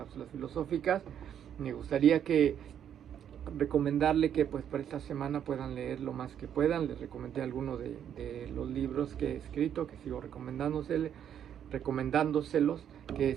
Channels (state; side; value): quieter; left; 9.4 dB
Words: filosóficas. Me gustaría recomendarle que pues por esta semana puedan leer lo más que puedan. Les recomendé algunos de los libros que he escrito, que sigo recomendándoselos, que